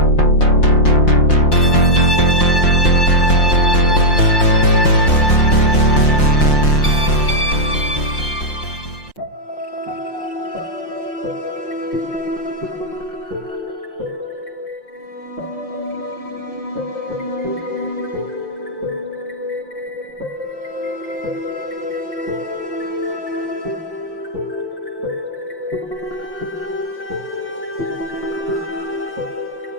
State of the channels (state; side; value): late; right; 5.7 ms